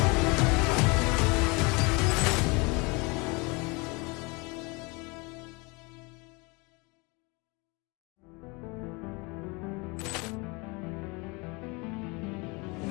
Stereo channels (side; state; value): right; quieter; 27.8 dB